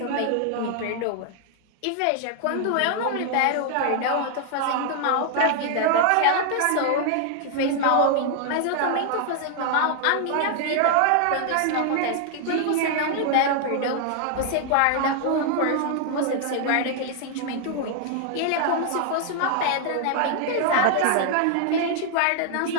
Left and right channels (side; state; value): both; different; correlation 0.00